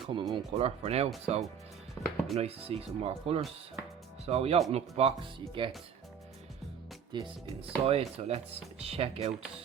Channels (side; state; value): left; quieter; 7.6 dB